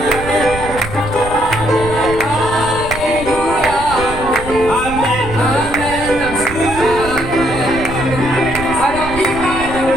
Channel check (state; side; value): noise; right; rumble, 10 dB below the sound